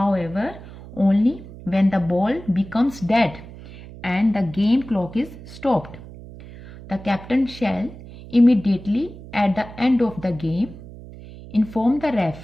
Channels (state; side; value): noise; right; hum, 16 dB below the sound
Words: only when the ball becomes dead and the game clock is stopped. The captain shall immediately at the end of the game inform the